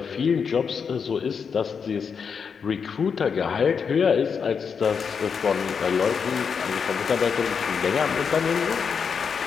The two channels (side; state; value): right; quieter; 6.2 dB